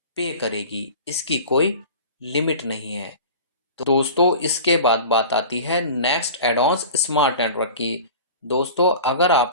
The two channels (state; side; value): inverted; both; correlation -0.38